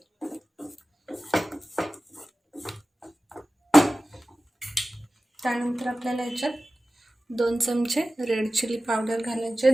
त्यानंतर आपल्याला याच्यात 2 चमचे रेड चिली पावडर घालायचे.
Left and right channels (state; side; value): normal; both; correlation 0.96